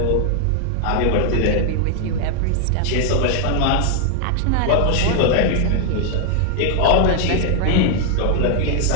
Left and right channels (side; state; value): both; different; correlation 0.00